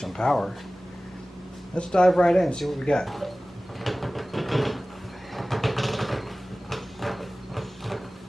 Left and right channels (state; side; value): normal; both; correlation 0.98